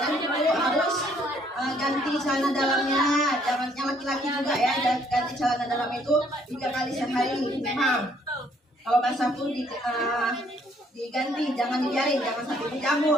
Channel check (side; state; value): both; normal; correlation 0.65